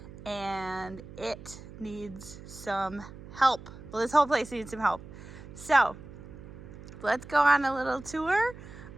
and it needs some help. Well, this whole place needs some help. So let's go on a little tour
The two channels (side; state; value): right; noise; hum, 15 dB below the sound